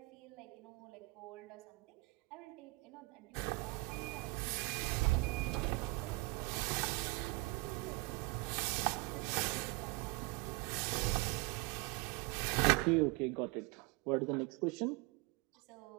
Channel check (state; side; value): quieter; left; 25.0 dB